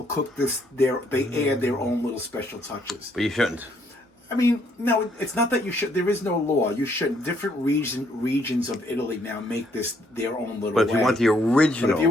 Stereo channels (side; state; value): both; normal; correlation 0.69